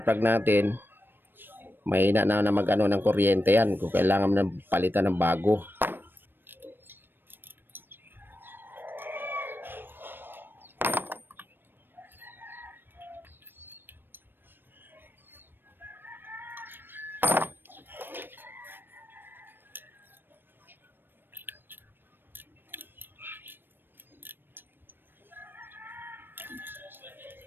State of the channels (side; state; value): left; late; 0.096 ms